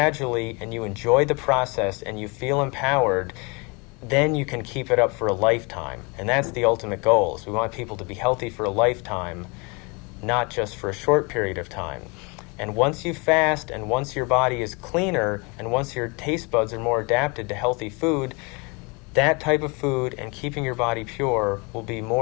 and you enjoy the process and you feel empowered, then you can keep it up for a lifetime. And that's the ultimate goal, is we want people to be healthy for a lifetime, not just for a short period of time. And once you fast and once your body is cleaner and once your taste buds are more adapted to healthy food, that type of food and keeping your body pure will be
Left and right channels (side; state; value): right; quieter; 29.7 dB